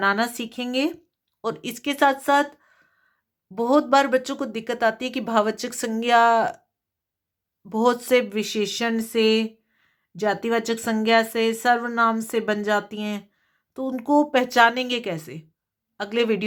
सीखेंगे। और इसके साथ साथ बहुत बार बच्चों को दिक्कत आती है कि भाववाचक संज्ञा बहुत से विशेषण से, जातिवाचक संज्ञा से, सर्वनाम से बन जाती हैं, तो उनको पहचानेंगे कैसे? अगले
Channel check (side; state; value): both; identical; correlation 1.00